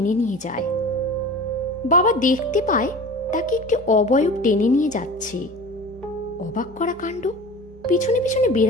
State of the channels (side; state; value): both; normal; correlation 0.37